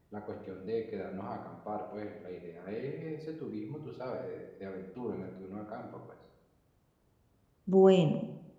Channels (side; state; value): both; identical; correlation 1.00